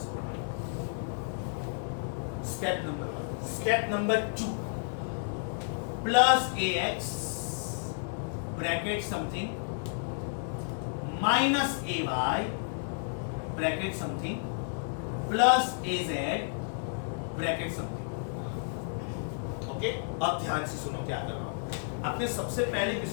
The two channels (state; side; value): silent; right; 57 dB below the other